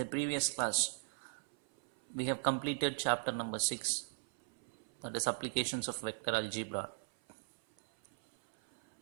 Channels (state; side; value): silent; left; 52 dB below the other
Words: previous class, we have completed chapter number 6, that is applications of vector algebra.